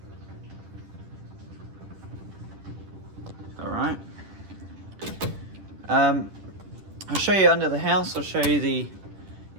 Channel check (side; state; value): left; late; 10 ms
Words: Alright. I'll show you under the house. I'll show you the